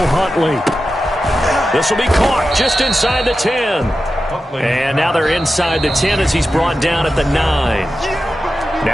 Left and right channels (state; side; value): normal; both; correlation 0.92